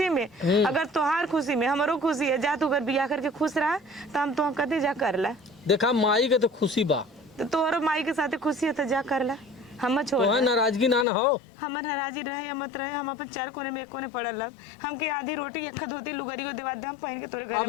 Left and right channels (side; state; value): right; drops out; at 11.1 s